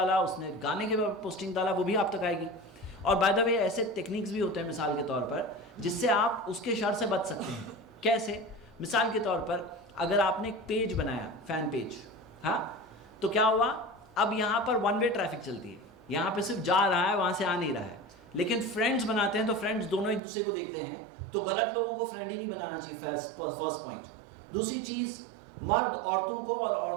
اس نے گانے کے اوپر پوسٹنگ ڈالا, وہ بھی آپ تک آئے گی. اور بائی دا وے ایسے ٹیکنیکس بھی ہوتے ہیں مثال کے طور پر جس سے آپ اس کے شر سے بچ سکتے ہیں. کیسے؟ مثال کے طور پر اگر آپ نے ایک پیج بنایا, فین پیج, ہاں, تو کیا ہوا, اب یہاں پر ون وے ٹریفک چلتی ہے, یہاں پہ صرف جا رہا ہے, وہاں سے آ نہیں رہا ہے. لیکن فرینڈز بناتے ہیں تو فرینڈز دونوں ایک دوسرے کو دیکھتے ہیں, تو غلط لوگوں کو فرینڈ ہی نہیں بنانا چاہیے, فرسٹ پوائنٹ. دوسری چیز, مرد عورتوں کو اور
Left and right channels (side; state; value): left; drops out; at 20.2 s